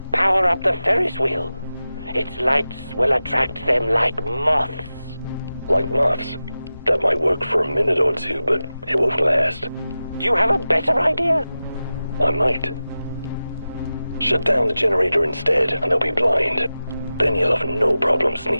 power up the Ferris wheel. Its lights will attract them like moths. Like moths? That might work for a minute or two, but it won't last. Do you have a better idea? I might. Shut down the generator instead, and they'll be blind. Then you'll have no problem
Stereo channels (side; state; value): both; inverted; correlation -0.94